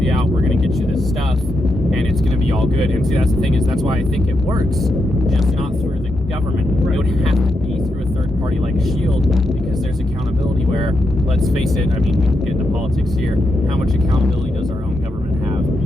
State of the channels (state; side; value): normal; both; correlation 0.84